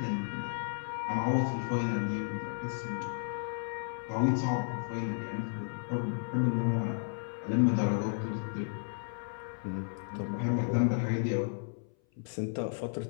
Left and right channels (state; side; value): silent; right; 56 dB below the other